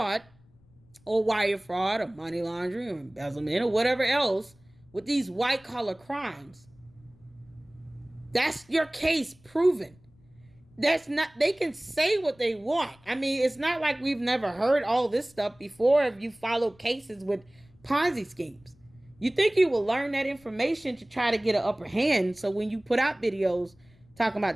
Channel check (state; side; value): noise; left; rumble, 29 dB below the sound